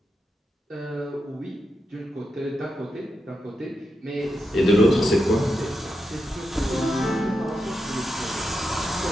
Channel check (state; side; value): normal; both; correlation 0.87